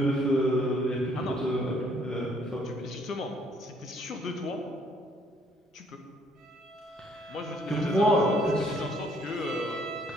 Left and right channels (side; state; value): both; normal; correlation 0.65